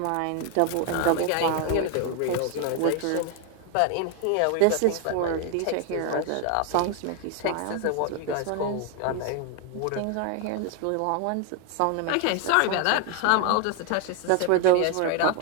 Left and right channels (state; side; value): different; both; correlation 0.01